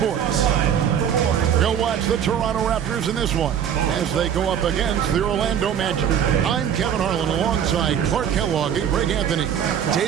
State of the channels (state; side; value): quieter; left; 8.9 dB